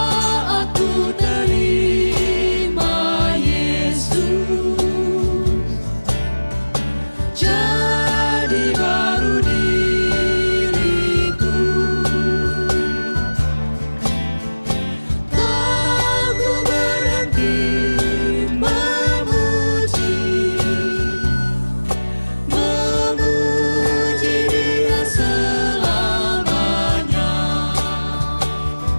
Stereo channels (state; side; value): inverted; both; correlation -1.00